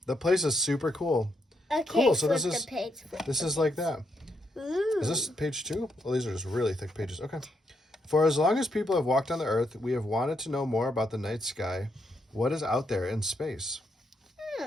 The place is super cool. Okay, cool. So this is like that. Ooh. Is this page 2? Well, these are just really thick pages. Okay. For as long as people have walked on the Earth, we have wanted to know more about the night sky. What is out there in space?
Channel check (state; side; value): normal; both; correlation 0.78